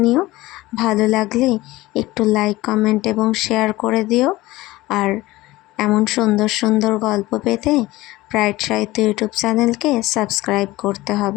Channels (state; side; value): quieter; right; 18.6 dB